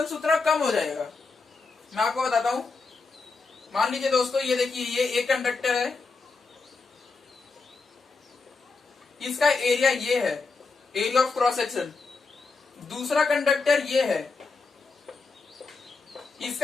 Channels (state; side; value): quieter; right; 4.2 dB